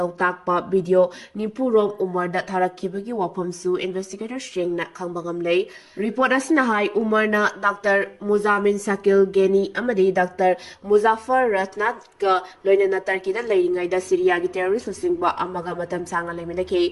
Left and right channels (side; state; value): both; identical; correlation 1.00